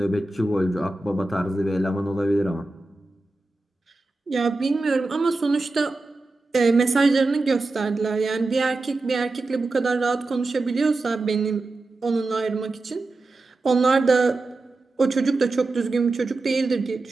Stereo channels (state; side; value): quieter; left; 3.2 dB